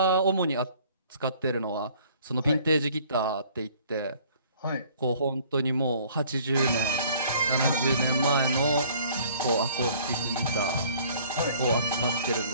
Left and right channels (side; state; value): both; inverted; correlation -0.55